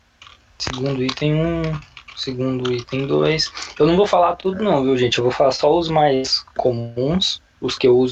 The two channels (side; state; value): both; identical; correlation 1.00